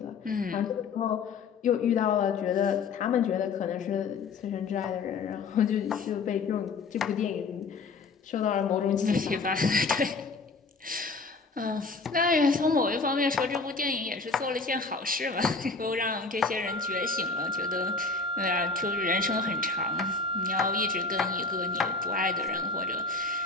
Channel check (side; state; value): right; quieter; 4.2 dB